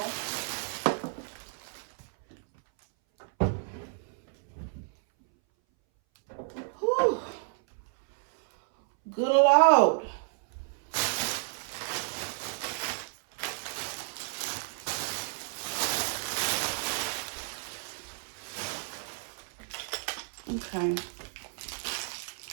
Whew. Good Lord. Okay.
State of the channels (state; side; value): silent; left; 57 dB below the other